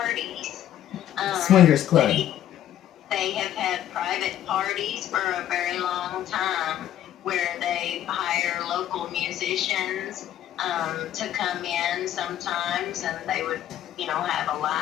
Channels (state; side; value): quieter; right; 11.7 dB